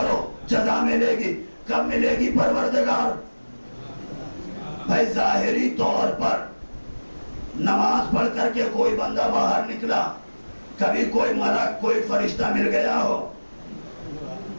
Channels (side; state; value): both; inverted; correlation -1.00